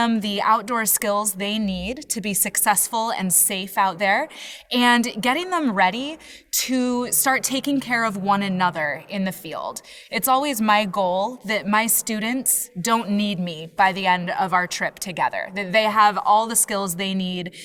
the outdoor skills they need to be successful and safe out there, and getting them ready to start taking care of one another in the field. It's always my goal that my students don't need me by the end of our trip together, that they have all the skills they need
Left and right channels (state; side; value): identical; both; correlation 1.00